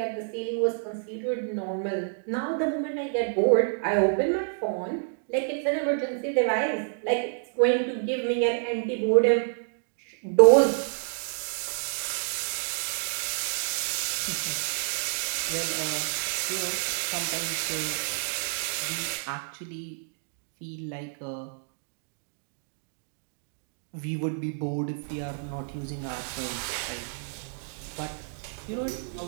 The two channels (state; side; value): silent; left; digital silence